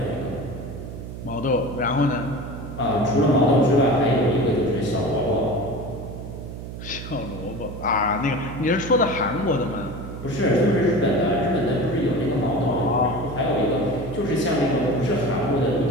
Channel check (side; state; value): right; noise; hum, 10 dB below the sound